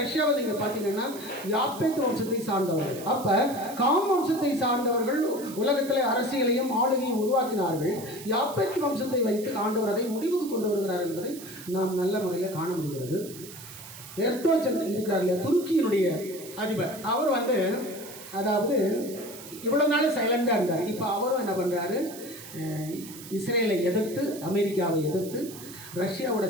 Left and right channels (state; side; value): noise; right; hiss, 15 dB below the sound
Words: நீங்கள் பார்த்தீங்கன்னா யாப்பேத் வம்சத்தை சார்ந்தவர்கள். அப்போ காம் வம்சத்தை சார்ந்தவர்கள் உலகத்தில் அரசியலையும் ஆளுகையும் உருவாக்கினார்கள். யாப்பேத் வம்சத்தை வைத்து ஆண்டவர் அதை முடிவுக்கு கொண்டு வருகிறார் என்பதை நாம் நல்ல முறையில் காண முடிகிறது. எர்டோகன் இருக்கிறார் இல்லையா, துருக்கியினுடைய அதிபர், அவர் அதாவது இவ்வளோ நாள் சைலண்டாக இருந்தார். இப்போ அவரும் என்ன பண்ணுறாரு, இஸ்ரேலை எதிர்த்து அமெரிக்காவை எதிர்த்து ரஷ்யாவோட